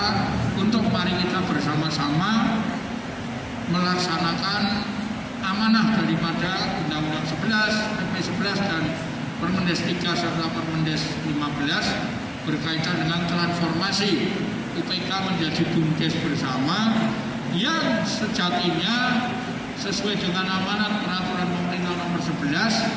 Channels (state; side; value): identical; both; correlation 1.00